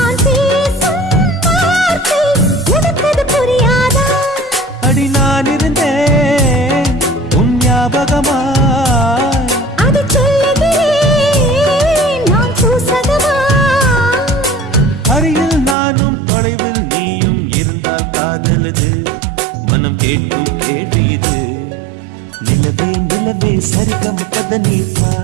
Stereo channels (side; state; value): left; drops out; at 15.8 s